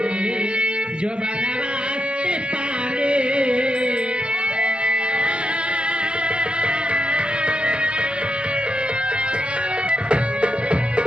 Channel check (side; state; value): left; late; 0.051 ms